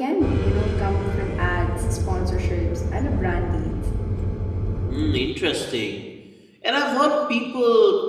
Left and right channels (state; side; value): identical; both; correlation 1.00